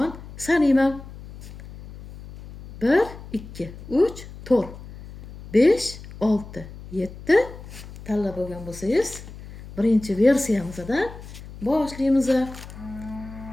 sanayman. 1 2 3 4 5 6 7 tanlab olgan bo'lsangiz, birinchi versiyamizdan boshlaymiz.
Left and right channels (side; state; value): left; noise; hum, 15 dB below the sound